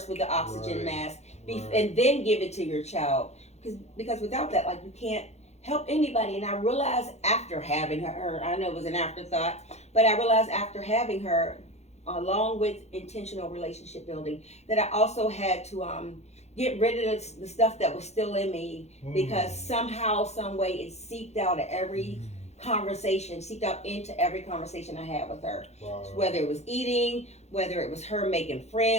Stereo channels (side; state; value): right; late; 0.32 ms